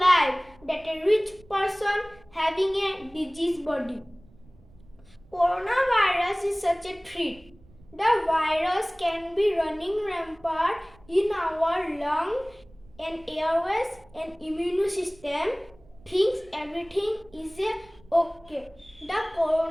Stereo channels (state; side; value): noise; right; rumble, 26 dB below the sound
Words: than a rich person having a diseased body. Coronavirus is such a threat. The virus can be running rampant in our lung and airways and immune system thinks everything is okay. The